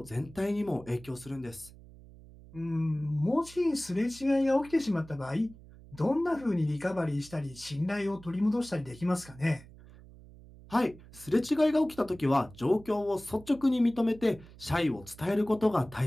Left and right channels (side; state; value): right; noise; hum, 20 dB below the sound